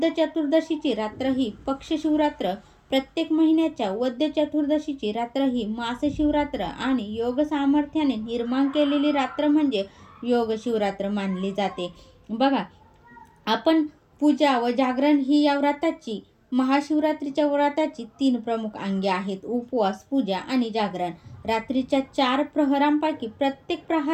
चतुर्दशीची रात्र ही पक्ष शिवरात्र, प्रत्येक महिन्याच्या वद्य चतुर्दशीची रात्र ही मास शिवरात्र आणि योग सामर्थ्याने निर्माण केलेली रात्र म्हणजे योग शिवरात्र मानली जाते. बघा, आपण पूजा व जागरण ही या व्रताची महाशिवरात्रीच्या व्रताची 3 प्रमुख अंगे आहेत: उपवास, पूजा आणि जागरण. रात्रीच्या 4 प्रहरांपैकी प्रत्येक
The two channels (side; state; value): both; identical; correlation 1.00